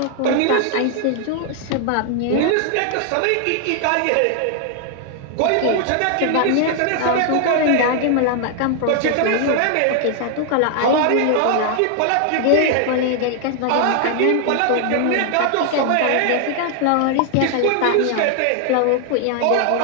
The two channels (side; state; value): both; different; correlation 0.00